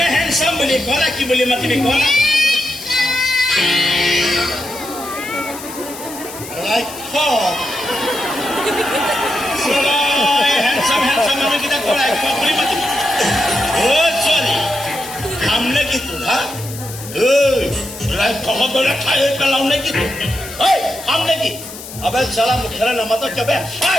হেণ্ডচাম বুলি কলা? কি বুলি মাতিবি কলা? হেণ্ডচাম মানুহকেইটা কৰাই বুলি মাতিবি? অ' ছোৱালী খাম নে কি তোৰ? হা খবৰে খাই পেলাও নে কি তোৰ? খাম নে কি? আবে চালা মুখেৰে নামাতো কিয় বে?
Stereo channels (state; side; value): noise; left; hiss, 13 dB below the sound